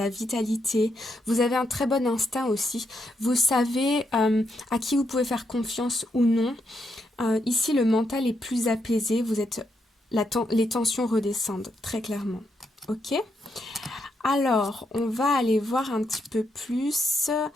vitalité. Vous avez un très bon instinct aussi. Vous savez à qui vous pouvez faire confiance ou non. Ici, le mental est plus apaisé. Vous êtes, les tensions redescendent, très clairement. Ok? Alors, on va aller voir un petit peu plus.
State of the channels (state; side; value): normal; both; correlation 0.80